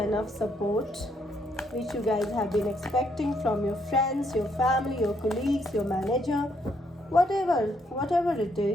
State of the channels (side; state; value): both; normal; correlation 0.73